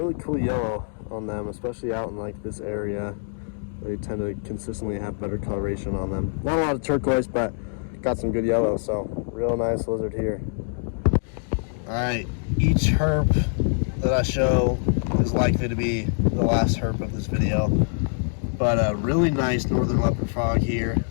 cool yellow on them, especially out in like this area. They tend to consistently have better coloration on them. Not a lot of turquoise, but got some good yellow. So real nice lizard here. All right, each herp that I show is likely to be the last herp of this video. But a really nice northern leopard frog here.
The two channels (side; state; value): right; silent; digital silence